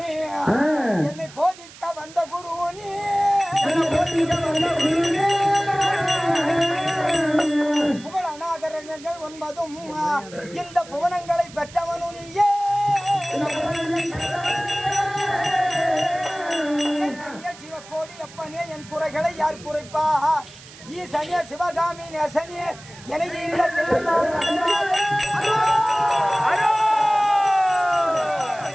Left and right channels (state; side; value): noise; right; hiss, 19 dB below the sound